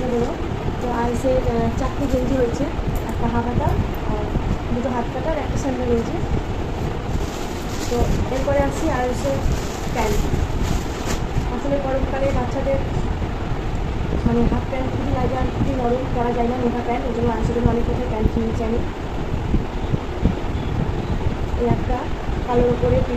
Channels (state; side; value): identical; both; correlation 1.00